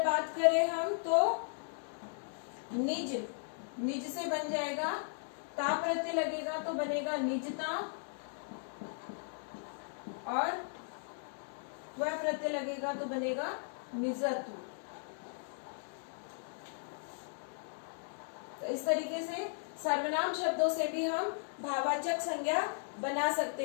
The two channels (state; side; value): silent; right; digital silence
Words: बात करें हम तो निज, निज से बन जाएगा ता प्रत्यय लगेगा तो बनेगा निजता, और वह प्रत्यय लगेगा तो बनेगा निजत्व। तो इस तरीके से सर्वनाम शब्दों से भी हम भाववाचक संज्ञा बना